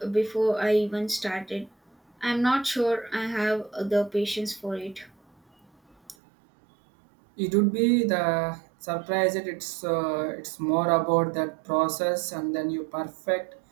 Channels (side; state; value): left; drops out; at 6.2 s